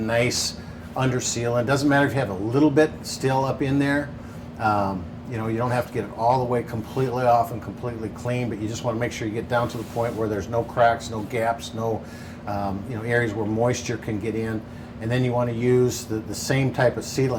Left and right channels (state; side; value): identical; both; correlation 1.00